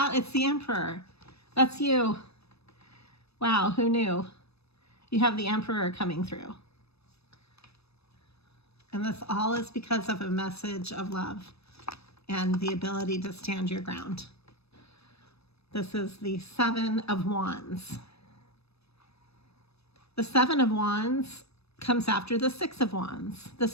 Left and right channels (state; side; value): late; right; 0.78 ms